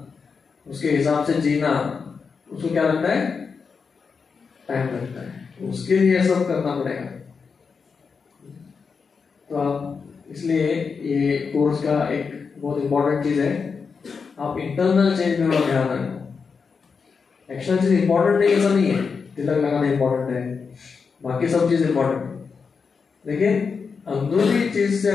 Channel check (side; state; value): right; quieter; 5.4 dB